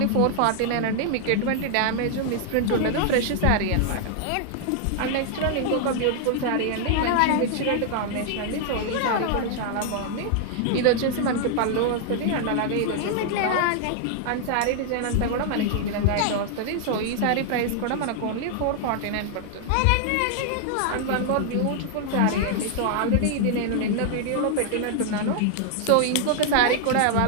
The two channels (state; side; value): different; both; correlation 0.00